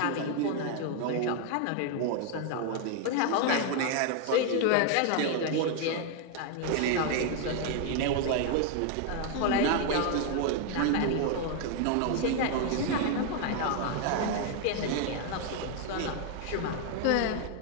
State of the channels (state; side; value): different; both; correlation 0.00